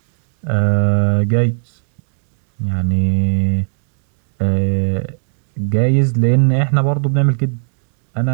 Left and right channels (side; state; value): left; silent; digital silence